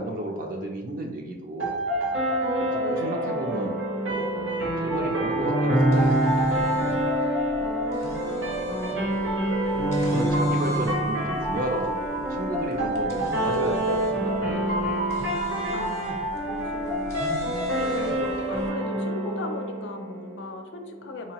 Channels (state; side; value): normal; both; correlation 0.35